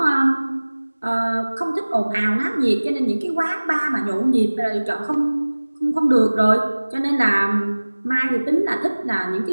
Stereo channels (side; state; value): both; inverted; correlation -1.00